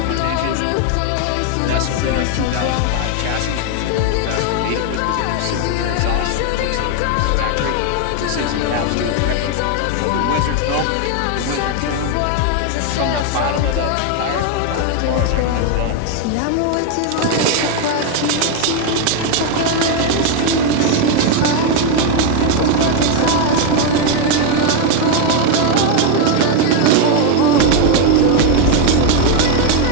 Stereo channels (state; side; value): different; both; correlation 0.01